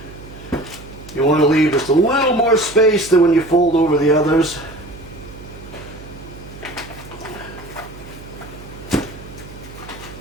you want to leave just a little more space than when you fold over the others.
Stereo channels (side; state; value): right; noise; hum, 17 dB below the sound